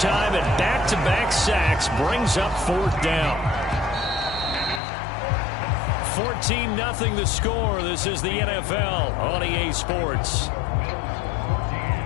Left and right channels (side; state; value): right; drops out; at 4.8 s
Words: and back-to-back sacks brings up 4th down. 14-0 the score. This is the NFL on EA Sports.